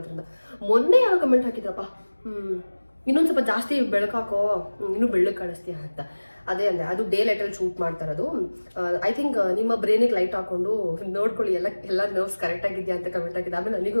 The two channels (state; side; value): inverted; both; correlation -1.00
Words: ಮೊನ್ನೆ ಯಾರೋ ಕಮೆಂಟ್ ಹಾಕಿದ್ರಪ್ಪ, ಇನ್ನೊಂದು ಸ್ವಲ್ಪ ಜಾಸ್ತಿ ಬೆಳಕಾಕೋ, ಇನ್ನೂ ಬೆಳ್ಳಗೆ ಕಾಣಿಸ್ತೀಯ ಅಂತ. ಅದೇ ಅಂದರೆ ಅದು ಡೇ ಲೈಟಲ್ಲಿ ಶೂಟ್ ಮಾಡ್ತಾ ಇರೋದು. ಐ ಥಿಂಕ್ ನಿಮ್ಮ ಬ್ರೈನಿಗೆ ಲೈಟ್ ಹಾಕೊಂಡು ನೋಡ್ಕೊಳ್ಳಿ ಎಲ್ಲ ನರ್ವ್ಸ್ ಕರೆಕ್ಟಾಗಿದೆಯಾ ಅಂತ ಕಮೆಂಟ್ ಆಗಿದೆ. ಆಮೇಲೆ ನನಗೂ